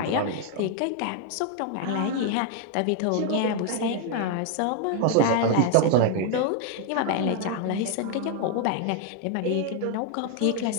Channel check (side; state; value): both; different; correlation 0.00